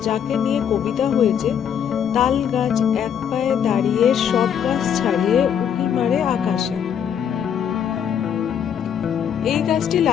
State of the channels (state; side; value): quieter; right; 8.5 dB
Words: যাকে নিয়ে কবিতা হয়েছে, তাল গাছ এক পায়ে দাঁড়িয়ে সব গাছ ছাড়িয়ে উঁকি মারে আকাশে। এই গাছটি